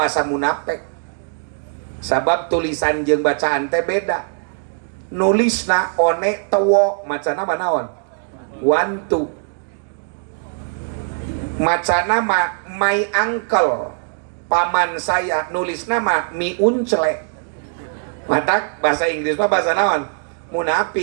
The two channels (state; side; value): silent; left; 63 dB below the other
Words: munafik. Sabab tulisan jeung bacaan teh beda. Nulisna one tewo macana manaon? Wantu. Macana mah my uncle, paman saya, nulisna mah mi uncle. Matak bahasa Inggris mah bahasa naon?